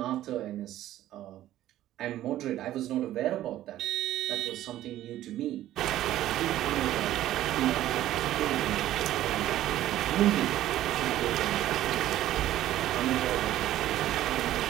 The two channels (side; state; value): left; quieter; 13.6 dB